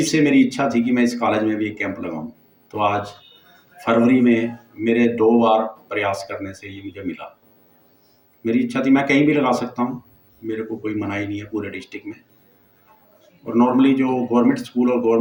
से मेरी इच्छा थी कि मैं इस कॉलेज में भी एक कैंप लगाऊं, तो आज फरवरी में मेरे 2 बार प्रयास करने से ये मुझे मिला। मेरी इच्छा थी मैं कहीं भी लगा सकता हूँ, मेरे को कोई मनाही नहीं है पूरे डिस्ट्रिक्ट में, और नॉर्मली जो गवर्नमेंट स्कूल और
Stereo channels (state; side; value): identical; both; correlation 1.00